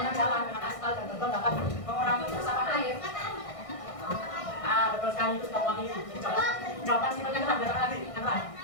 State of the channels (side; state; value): right; late; 1.6 ms